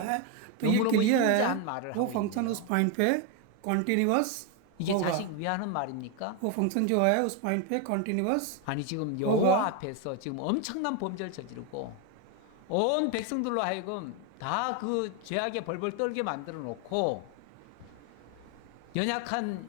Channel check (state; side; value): different; both; correlation 0.02